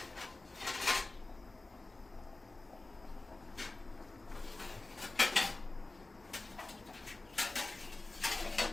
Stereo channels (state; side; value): quieter; right; 3.1 dB